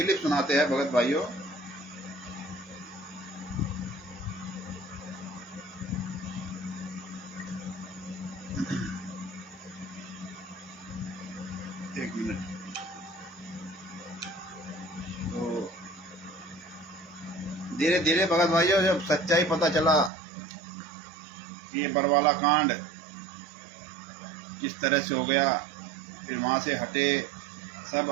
सुनाते हैं भगत भाइयों। एक मिनट। तो धीरे धीरे भगत भाइयों जब सच्चाई पता चला कि ये बरवाला कांड किस तरह से हो गया, फिर वहाँ से हटे, सब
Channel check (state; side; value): drops out; left; at 20.1 s